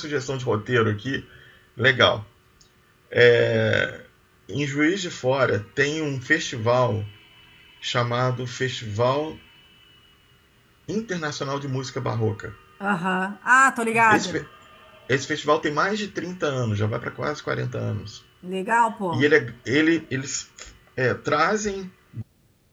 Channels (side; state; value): both; identical; correlation 1.00